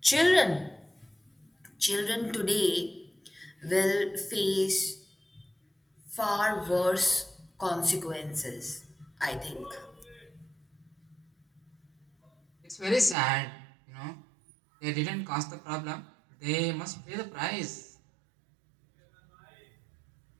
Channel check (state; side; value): drops out; left; at 13.2 s